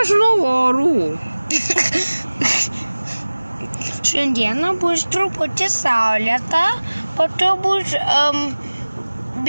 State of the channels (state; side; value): inverted; both; correlation -1.00